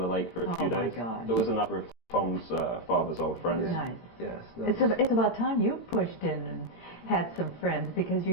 lake for a few Oh my days. gosh. There was another of Tom's father's old friends. Nice. Yes. It's about time you pushed in and had some friends because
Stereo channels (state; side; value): late; right; 18 ms